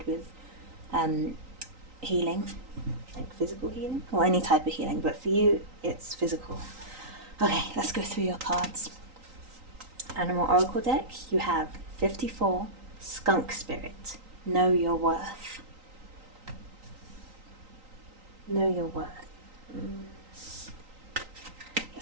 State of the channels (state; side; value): late; left; 3.9 ms